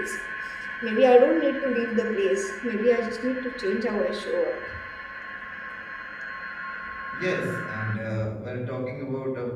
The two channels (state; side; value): identical; both; correlation 1.00